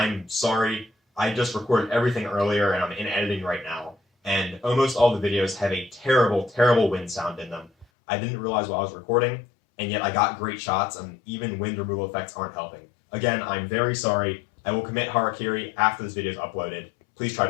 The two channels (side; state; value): right; drops out; at 7.9 s